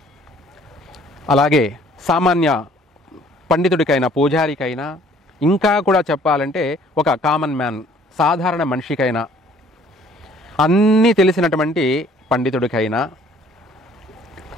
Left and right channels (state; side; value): normal; both; correlation 0.57